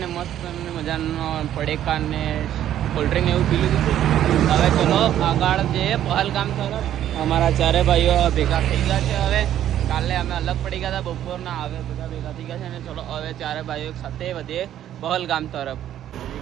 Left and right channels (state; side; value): quieter; left; 11.4 dB